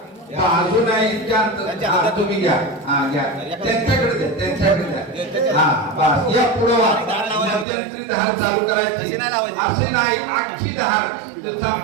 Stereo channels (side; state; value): left; drops out; at 7.7 s